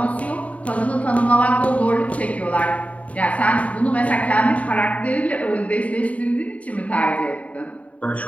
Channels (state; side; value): late; right; 0.067 ms